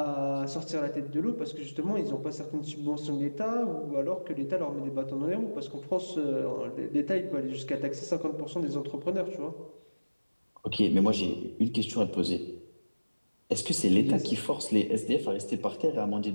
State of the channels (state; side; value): inverted; both; correlation -1.00